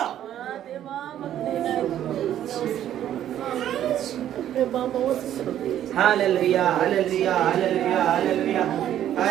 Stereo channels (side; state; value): left; quieter; 11.3 dB